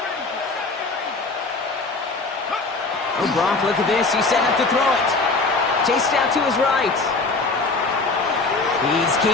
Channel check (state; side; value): quieter; right; 3.7 dB